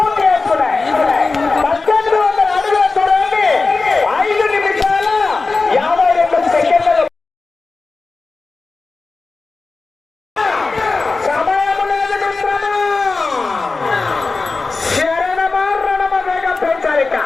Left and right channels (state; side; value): quieter; right; 3.9 dB